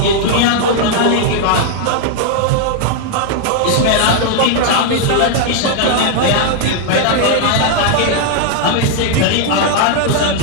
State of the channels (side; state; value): both; different; correlation 0.00